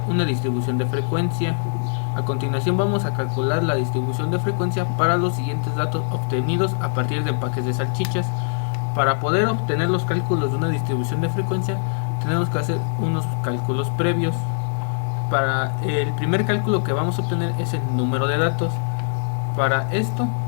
una distribución de frecuencia. A continuación vamos a calcular la distribución de frecuencia para los siguientes datos obtenidos a partir de empaques de salchichas. Para poder obtener los cálculos de una distribución de frecuencia tenemos que hacer unos cálculos previos. Para el primer cálculo que vamos a obtener es el número de datos. Para esto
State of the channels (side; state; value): right; silent; 60 dB below the other